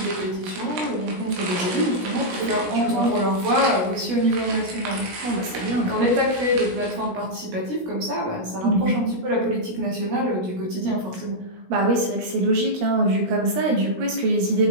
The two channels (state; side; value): late; left; 16 ms